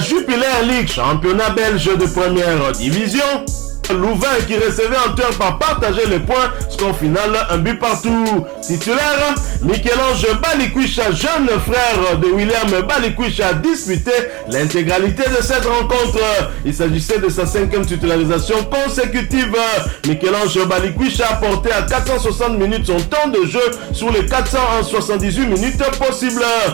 League, championnat belge de première division. Louvain qui recevait en turn par partager les points, score final un but partout. Titulaire, Michel-Ange Balikwisha, jeune frère de William Balikwisha, a disputé l'intégralité de cette rencontre. Il s'agissait de sa 5e titularisation consécutive. Michel-Ange Balikwisha a porté à 460 minutes son temps de jeu sur les 478 minutes possibles,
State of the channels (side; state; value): left; quieter; 23.4 dB